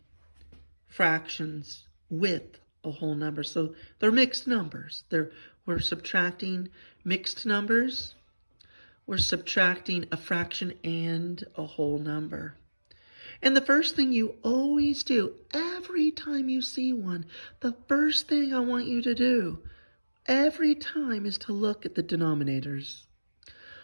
fractions with a whole number. So they're mixed numbers. We're subtracting mixed numbers. We're subtracting a fraction and a whole number. And the first thing you always do, every time you see one, the first thing I want you to do every time is to look at the denominators.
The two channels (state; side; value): inverted; both; correlation -1.00